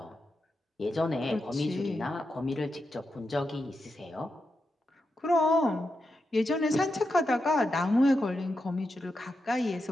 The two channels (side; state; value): both; normal; correlation 0.87